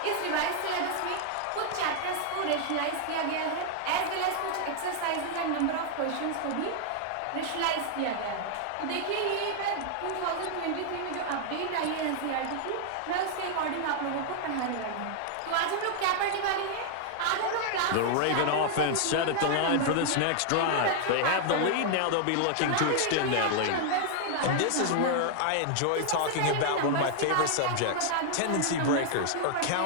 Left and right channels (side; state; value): both; different; correlation 0.00